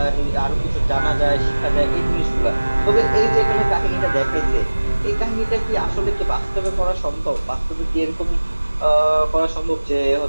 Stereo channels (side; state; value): both; inverted; correlation -1.00